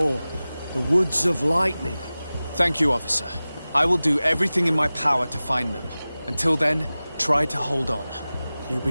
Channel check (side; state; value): both; inverted; correlation -0.97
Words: the Woods of Lightning. Thank you, officer. I will do everything in my power to find them. Until then, try to hold on. You